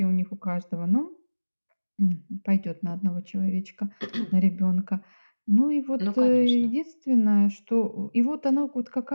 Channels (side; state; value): both; inverted; correlation -1.00